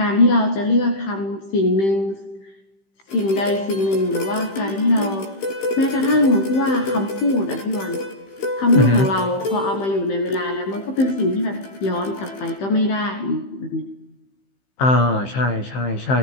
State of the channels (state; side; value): late; right; 15 ms